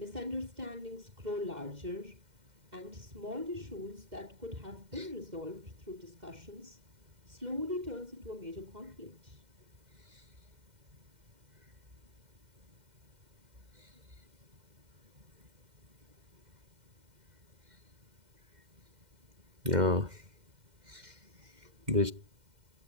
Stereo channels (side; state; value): left; late; 2.1 ms